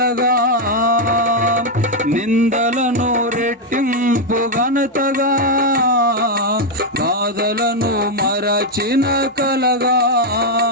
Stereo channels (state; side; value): normal; both; correlation 0.02